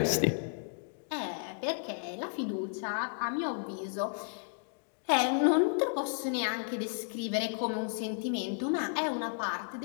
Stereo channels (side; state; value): right; silent; digital silence